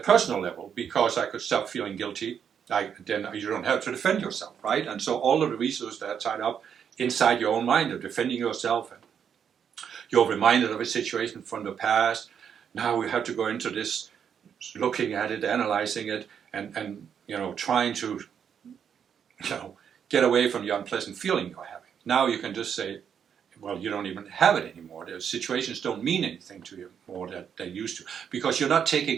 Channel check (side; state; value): left; quieter; 7.9 dB